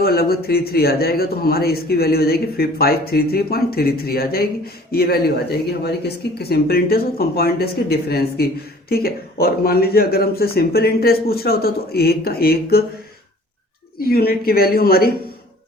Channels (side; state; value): both; normal; correlation 0.50